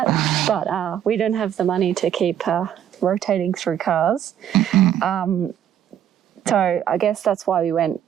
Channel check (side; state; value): left; quieter; 10.1 dB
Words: but we don't have the money to keep rotating through cars. So I guess that's why we went